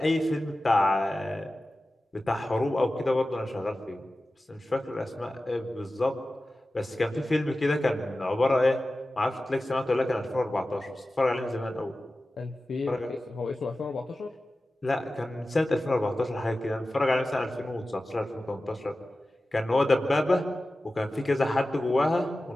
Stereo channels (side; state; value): both; normal; correlation 0.95